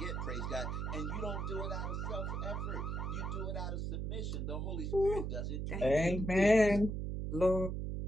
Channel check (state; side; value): noise; right; hum, 2 dB below the sound